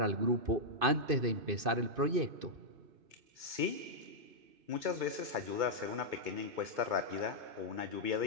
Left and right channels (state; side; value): late; left; 2.5 ms